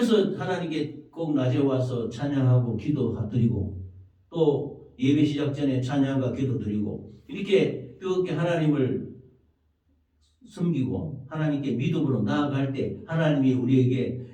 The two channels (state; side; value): identical; both; correlation 1.00